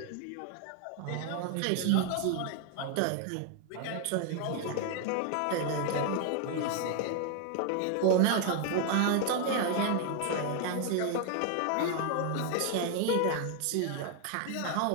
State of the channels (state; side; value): different; both; correlation 0.00